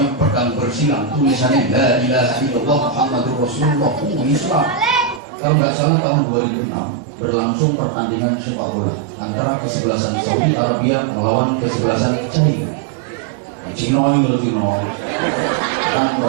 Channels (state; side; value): drops out; left; at 5.2 s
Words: pedang bersilang, tulisannya La ilaha illallah Muhammadur Rasulullah. Islam. Kalau nggak salah tahun 2006 berlangsung pertandingan sepak bola antara kesebelasan Saudi Arabia melawan kesebelasan China. Cina kan